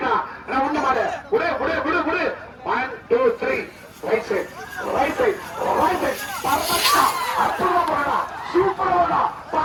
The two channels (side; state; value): both; identical; correlation 1.00